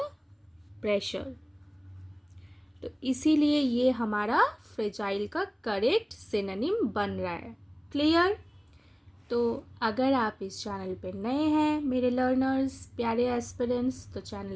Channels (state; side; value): identical; both; correlation 1.00